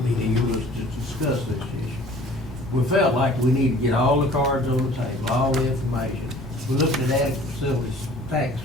meeting. It was to discuss this issue. We felt like we need to get all the cards on the table, all the information. We looked at adequate facilities tax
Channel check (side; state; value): both; normal; correlation 0.50